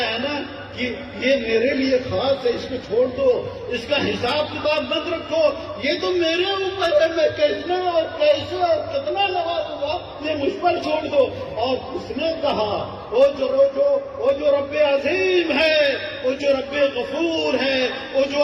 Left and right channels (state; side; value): identical; both; correlation 1.00